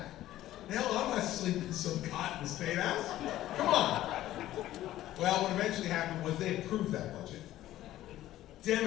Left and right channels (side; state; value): right; quieter; 14.2 dB